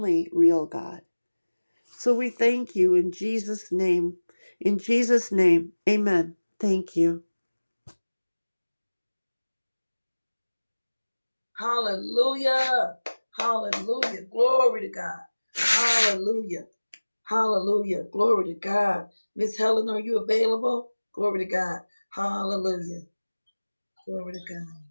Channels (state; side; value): inverted; both; correlation -1.00